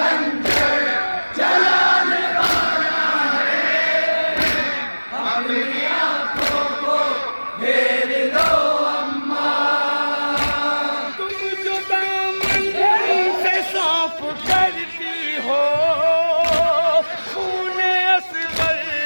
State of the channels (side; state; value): both; inverted; correlation -1.00